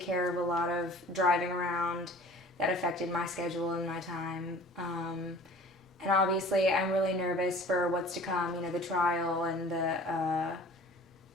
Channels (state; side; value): normal; both; correlation 0.46